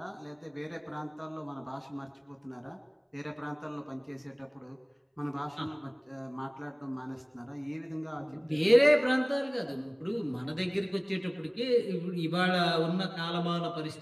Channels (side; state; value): both; identical; correlation 1.00